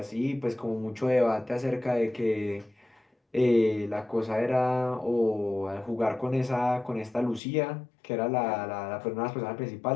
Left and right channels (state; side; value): drops out; right; at 7.4 s